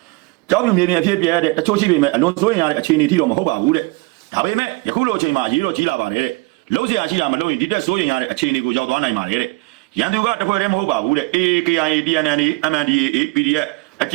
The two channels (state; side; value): quieter; left; 25.0 dB